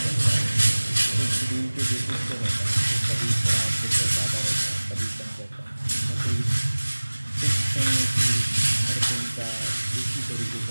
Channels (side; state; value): both; inverted; correlation -1.00